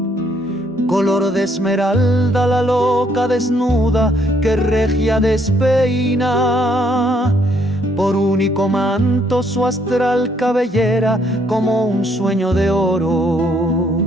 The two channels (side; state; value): both; normal; correlation 0.68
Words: Color de esmeralda la loca desnuda que regia despeina. Por único manto su astral cabellera como un sueño de oro,